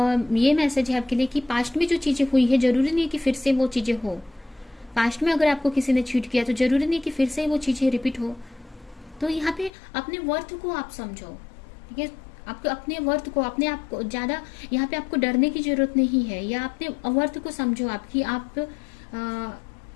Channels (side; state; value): right; drops out; at 9.7 s